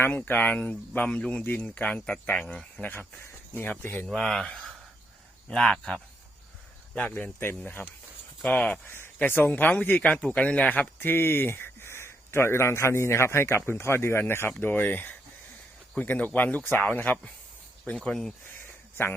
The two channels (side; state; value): both; normal; correlation 0.77